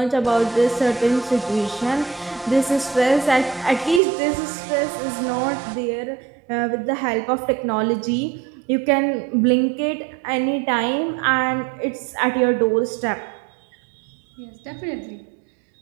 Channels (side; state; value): left; drops out; at 4.0 s